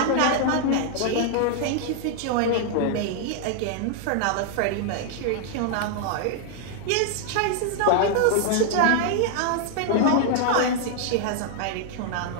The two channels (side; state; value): both; different; correlation 0.00